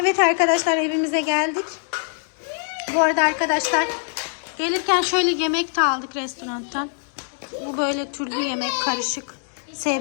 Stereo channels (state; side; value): silent; right; 63 dB below the other